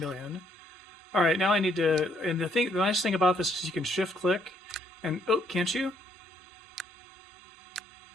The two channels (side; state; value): both; normal; correlation 0.70